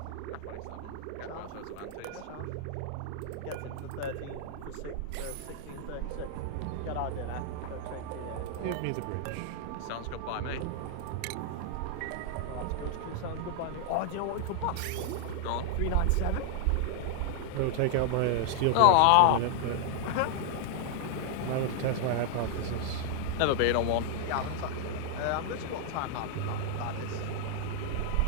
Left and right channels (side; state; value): both; different; correlation 0.00